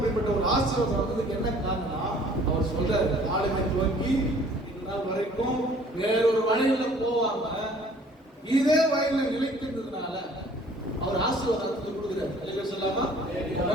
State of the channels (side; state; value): both; normal; correlation 0.54